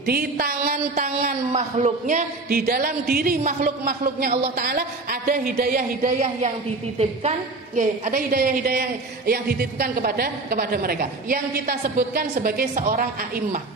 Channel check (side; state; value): left; quieter; 3.4 dB